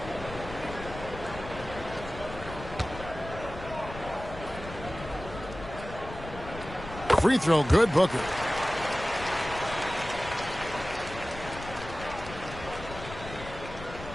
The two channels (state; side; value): noise; left; rumble, 12 dB below the sound